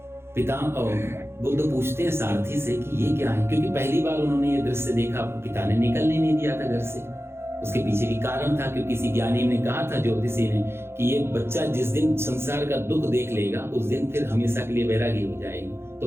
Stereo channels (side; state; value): left; late; 0.12 ms